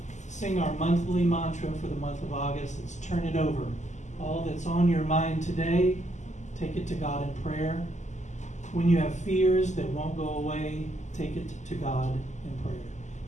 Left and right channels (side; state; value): right; late; 0.34 ms